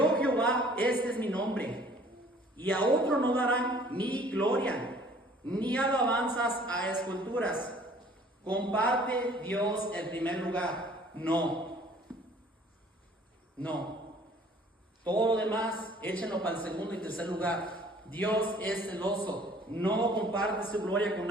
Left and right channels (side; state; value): both; normal; correlation 0.54